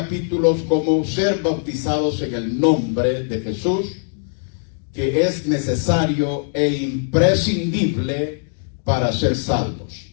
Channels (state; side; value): silent; right; digital silence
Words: como ser bautizados en el nombre de Jesús, que es necesario e imprescindible para ser salvos.